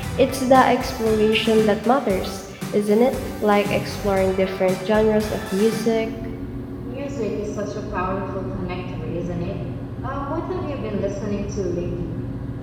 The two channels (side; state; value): both; identical; correlation 1.00